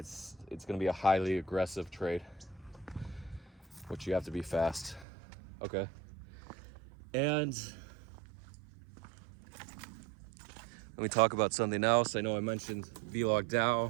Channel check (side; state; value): left; drops out; at 5.1 s